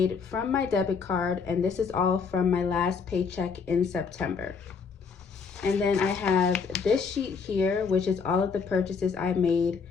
from my debit card, and this is all from my last paycheck in September. And then I have this sheet here, which is all of the purchases I made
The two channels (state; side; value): quieter; right; 5.6 dB